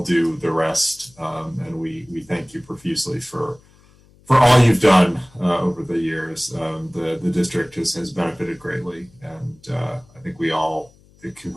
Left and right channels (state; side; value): noise; left; hum, 29 dB below the sound